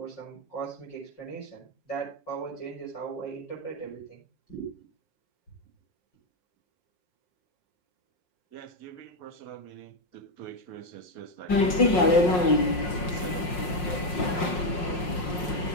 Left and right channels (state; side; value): late; right; 5.5 ms